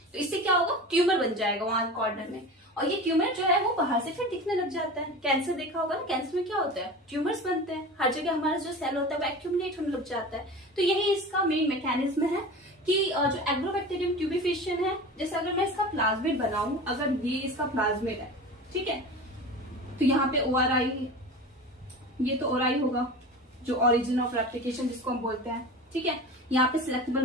तो इससे क्या होगा, ट्यूमर बन जाएगा वहां कॉर्नर में. और ये ट्यूमर जो है वो बाहर से फिर दिखने लग जाता है. कैंसर देखा होगा ना, कैंसर में क्या होता है, ट्यूमर्स बनते हैं. हर जगह हमारा जो सेल होता है वो एक्यूमुलेट होने लग जाता है. तो यही इसका मेन मैकेनिज्म है कि जो एग्रोबैक्टीरियम ट्यूबिफिशियन है, जैसे अगर मैं इसका प्लाज्मिड बनाऊं, अगर ये इसका प्लाज्मिड है, ठीक है, तो यहाँ पे ORI, ये तो ORI होगा जो ओरिजिन ऑफ रेप्लिकेशन जिसको हम बोलते हैं. ठीक है, यहाँ पे सिलेक्टेबल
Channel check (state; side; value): normal; both; correlation 0.32